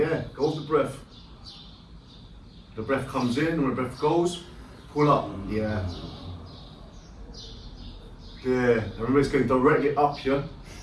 go with the breath. The breath comes in, and the breath goes, pull up. Yeah. There. And remember, it's going directly up here.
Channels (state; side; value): identical; both; correlation 1.00